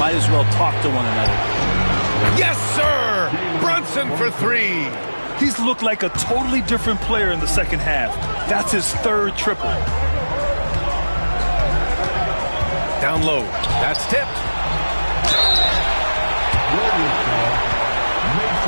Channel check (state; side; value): inverted; both; correlation -1.00